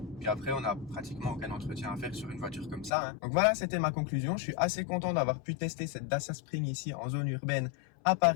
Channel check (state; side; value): drops out; right; at 2.9 s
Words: Puis après, on n'a pratiquement aucun entretien à faire sur une voiture comme ça, hein. Donc voilà, c'était ma conclusion. Je suis assez content d'avoir pu tester cette Dacia Spring ici en zone urbaine à